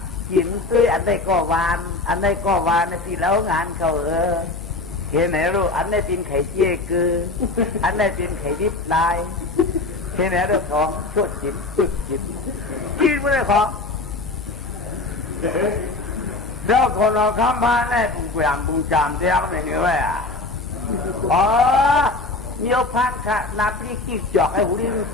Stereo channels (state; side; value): quieter; right; 3.3 dB